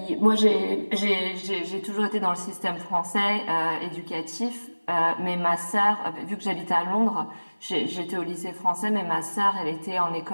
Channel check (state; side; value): inverted; both; correlation -1.00